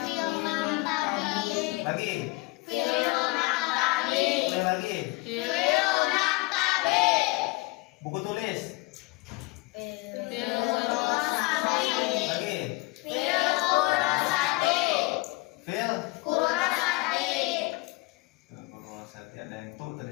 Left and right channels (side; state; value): right; quieter; 23.9 dB